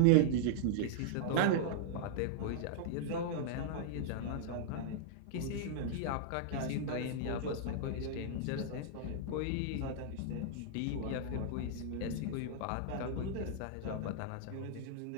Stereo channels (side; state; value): both; different; correlation -0.01